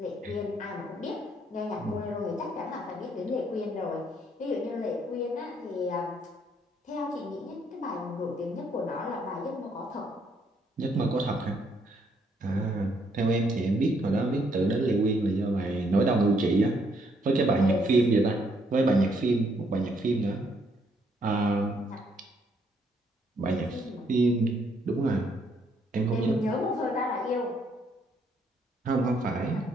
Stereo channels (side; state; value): both; normal; correlation 0.70